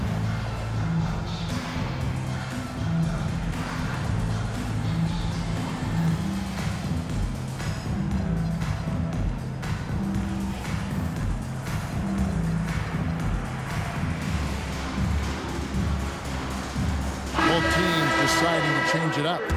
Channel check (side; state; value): both; identical; correlation 1.00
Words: deciding to change it up.